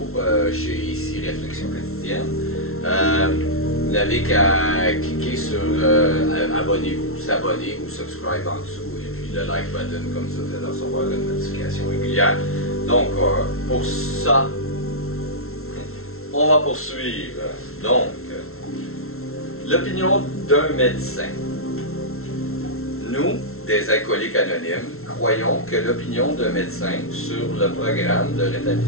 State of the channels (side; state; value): right; late; 0.62 ms